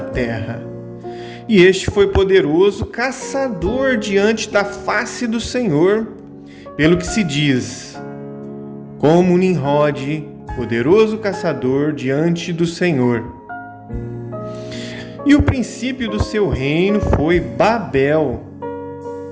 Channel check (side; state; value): both; identical; correlation 1.00